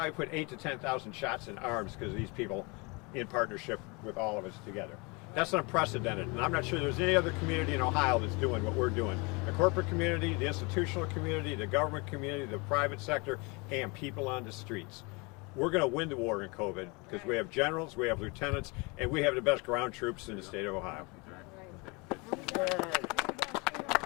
put 8,000 to 10,000 shots in arms because of these people in partnership with all of us together. That's unprecedented, and I'm not sure there's any other community in Ohio that's doing what we're doing. The corporate community, the institutional community, the government community, the private sector, and people on the streets. We're going to win the war in COVID because we have generals, we have lieutenants, and we have the best ground troops in the state of Ohio.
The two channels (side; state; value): right; quieter; 28.6 dB